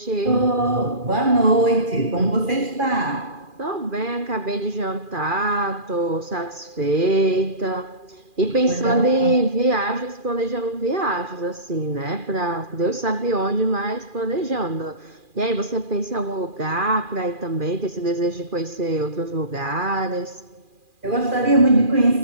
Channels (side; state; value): left; late; 2.4 ms